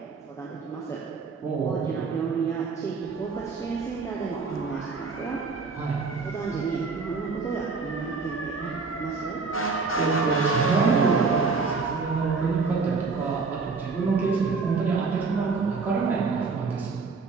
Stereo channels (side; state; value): left; quieter; 4.6 dB